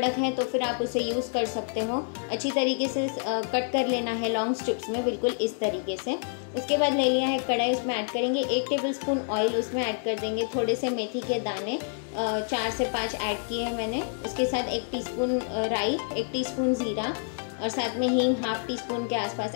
है तो फिर आप उसे यूज़ कर सकते हो। अच्छी तरीके से कट कर लेना है लॉन्ग स्ट्रिप्स में, बिल्कुल इस तरीके से। उसके बाद ले लिया है कढ़ाई, उसमें ऐड करेंगे 1 टेबलस्पून ऑयल। उसमें ऐड कर देंगे थोड़े से मेथी के दाने, 4 से 5 ऐड किए हैं मैंने। उसके साथ 1 टीस्पून राई, 1 टीस्पून ज़ीरा और साथ में हींग हाफ टी स्पून के आसपास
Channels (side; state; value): right; silent; digital silence